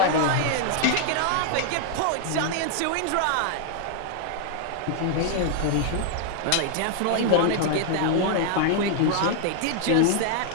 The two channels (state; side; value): different; both; correlation 0.00